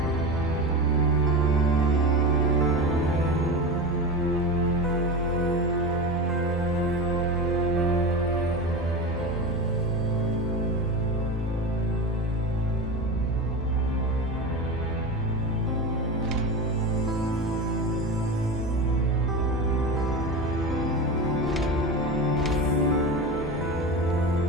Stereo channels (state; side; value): normal; both; correlation 0.25